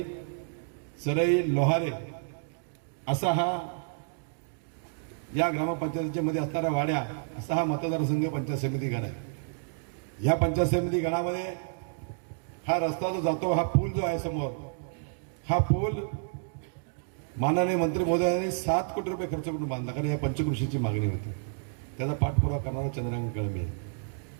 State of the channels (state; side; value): silent; left; digital silence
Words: सरई, लोहारे असा हा या ग्रामपंचायतीच्या मध्ये असणाऱ्या वाड्या असा हा मतदारसंघ पंचायत समिती गण आहे. या पंचायत समिती गणामध्ये हा रस्ता जो जातो, हा पूल जो आहे समोर, हा पूल माननीय मंत्री महोदयांनी 7 कोटी रुपये खर्च करून बांधला, कारण या पंचकृषीची मागणी होती. त्याचा पाठपुरावा करणारा चंद्रकांत कळमे.